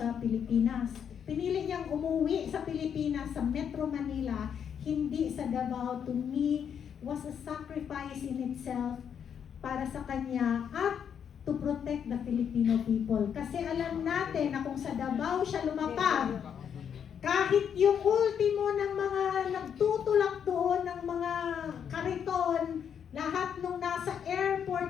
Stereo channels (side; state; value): right; quieter; 8.0 dB